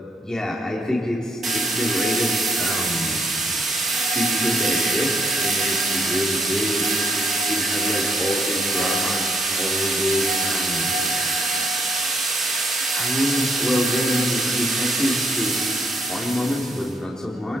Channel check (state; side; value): normal; both; correlation 0.72